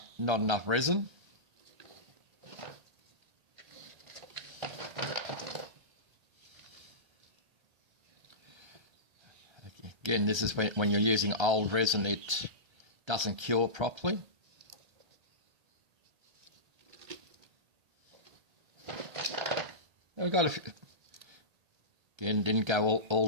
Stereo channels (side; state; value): left; late; 1.3 ms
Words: enough resin. Again, this is when you're using old resin, it doesn't cure properly. We've got a few. Again, didn't go all